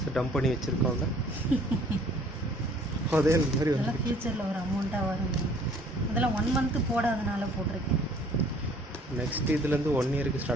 டம்ப் பண்ணி வச்சுருக்கோங்க. அதே மாதிரி அதெல்லாம் ஃப்யூச்சரில் ஒரு அமௌண்ட்டாக வரும். அதெல்லாம் 1 month போடாதனால போட்டிருக்கேன். நெக்ஸ்ட் இதுலேருந்து 1 yearக்கு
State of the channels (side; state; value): both; normal; correlation 0.56